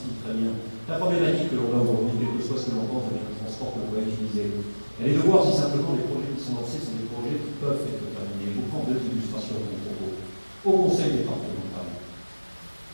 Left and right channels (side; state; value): both; inverted; correlation -1.00